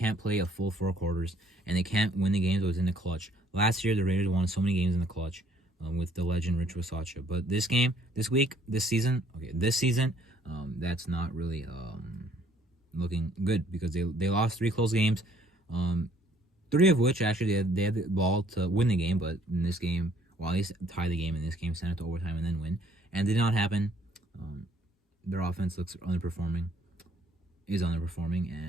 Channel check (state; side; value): normal; both; correlation 0.63